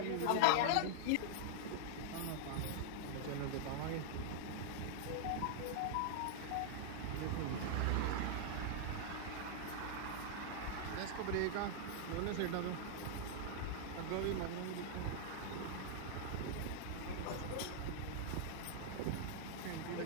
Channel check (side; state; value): both; different; correlation -0.01